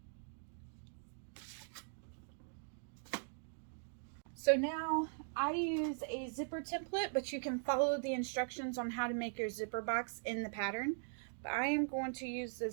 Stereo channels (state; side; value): silent; left; digital silence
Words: So now I use a zipper template, but you can follow the instructions on how to make your zipper box in the pattern. But I am going to use the